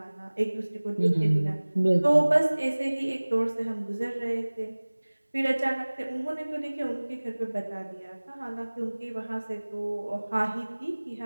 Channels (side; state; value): both; inverted; correlation -1.00